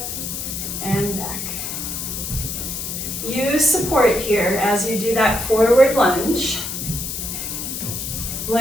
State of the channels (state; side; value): noise; left; hiss, 5 dB below the sound